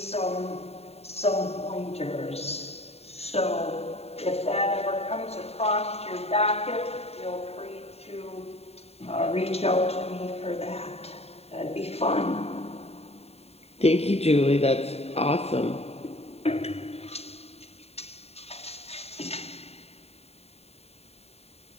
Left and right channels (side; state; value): right; late; 0.30 ms